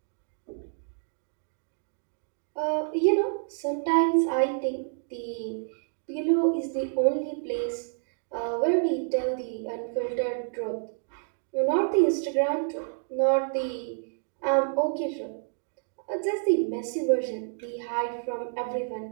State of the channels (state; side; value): silent; left; digital silence